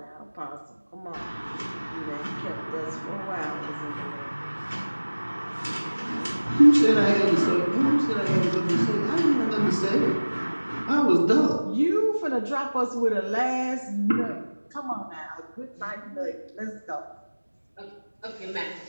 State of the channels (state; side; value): inverted; both; correlation -1.00